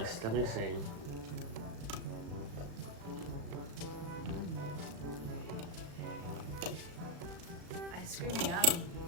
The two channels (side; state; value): left; late; 36 ms